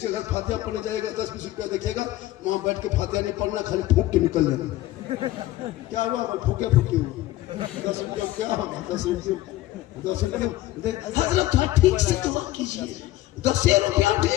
घर फातिहा पढ़ने जाएगा 10-20 रुपया देखेगा, वहां बैठ के फातिहा नहीं पढ़ना, खाली फूक के निकल जाएगा। क्या हुआ? फूके 10 रुपया क्या होगा? 10 रुपये हजरत थोड़ा ठीक से दुआ कीजिए। 10 रुपया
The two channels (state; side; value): quieter; right; 15.9 dB